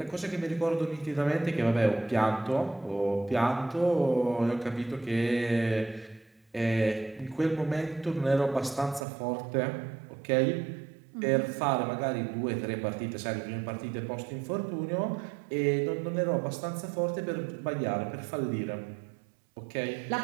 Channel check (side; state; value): left; drops out; at 9.1 s